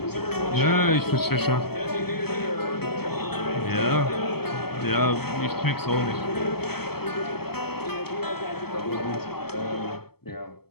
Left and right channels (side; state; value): right; late; 0.96 ms